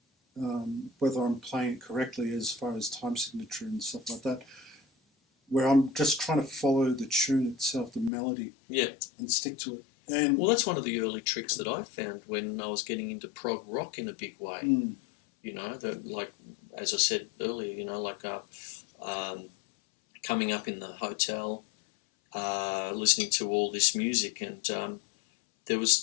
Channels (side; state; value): right; drops out; at 8.1 s